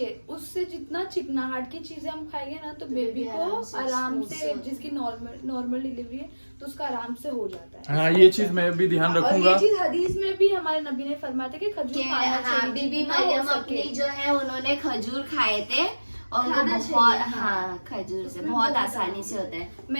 उससे जितना चिकनाहट की चीजें हम खाएंगे ना तो बेबी को आराम से, जिसकी नॉर्मल डिलीवरी है तो उसका आराम से हो जाता है। हाँ ये चीज मैं भी ध्यान और रखूंगा। ये चीज हदीस में भी हमारे नबी ने फरमाया था कि खजूर खाना हाँ, चाहिए बीबी जितना हो मरियम सके। अपनी जो है उन्होंने खजूर खाए थे और उनको खाना बहुत, चाहिए, हाँ खजूर से उसमें बहुत बहुत आसानी से होता है।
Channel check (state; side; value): inverted; both; correlation -1.00